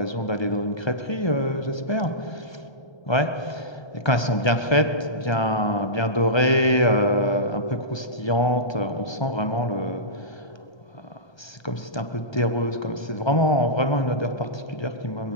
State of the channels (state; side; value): late; right; 1.3 ms